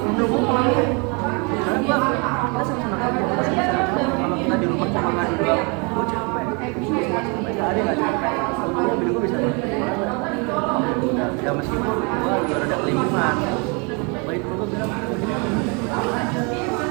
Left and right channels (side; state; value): left; quieter; 32.2 dB